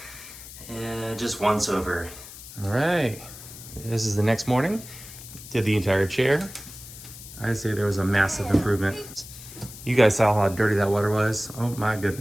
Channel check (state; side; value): noise; left; hiss, 15 dB below the sound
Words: just once over. All right, this is the next morning. Did the entire chair. I'd say there was a massive improvement. You guys saw how dirty that water was. Oh my